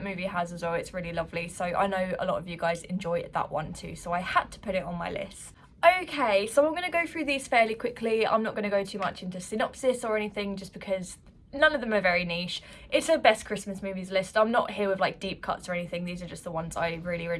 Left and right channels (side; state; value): both; identical; correlation 1.00